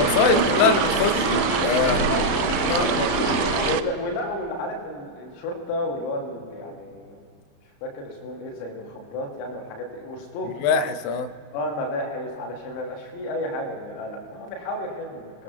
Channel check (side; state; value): right; late; 34 ms